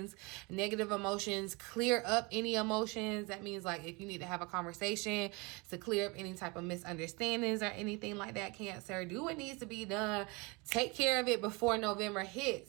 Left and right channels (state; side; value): quieter; left; 27.6 dB